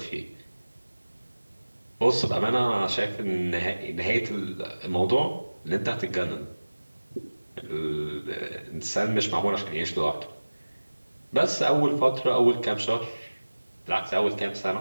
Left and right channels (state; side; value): inverted; both; correlation -1.00